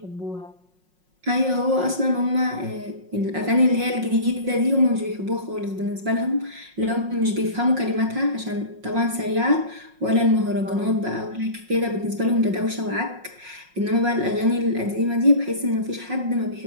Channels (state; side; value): late; left; 5.5 ms